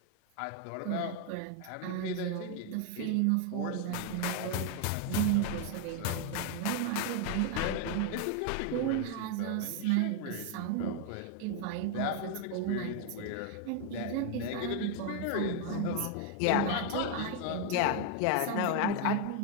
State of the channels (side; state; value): both; different; correlation 0.01